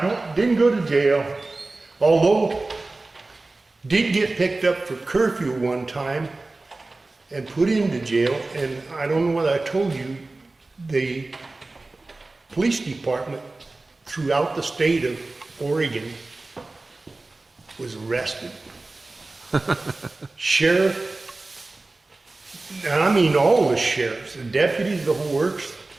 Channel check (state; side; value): quieter; left; 3.2 dB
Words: didn't go to jail. Although, did get picked up for curfew one time and put into jail. And I don't know whether I told you, the police department throughout the state of Oregon was arrested. Sheriff, and I mean all the sheriffs, the deputies, the whole works,